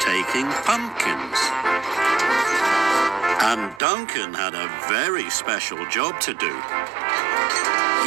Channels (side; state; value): left; drops out; at 3.8 s